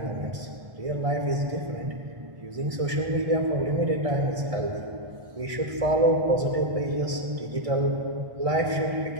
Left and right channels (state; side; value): late; left; 1.6 ms